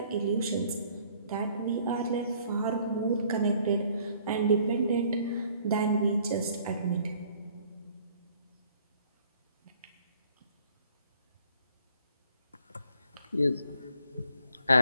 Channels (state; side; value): inverted; both; correlation -0.60